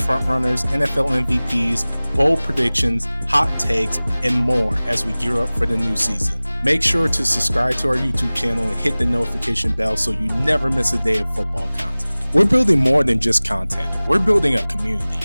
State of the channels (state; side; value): inverted; both; correlation -0.99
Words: frontrunners, NFL MVPs, bold predictions, hot takes, and more as we gear up for the new season. Make sure to subscribe to our YouTube channel and hit the notification bell so you never miss a day of football content. We're building more than just content. We're building a community.